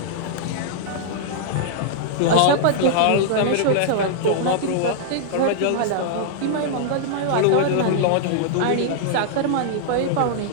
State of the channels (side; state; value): both; different; correlation -0.01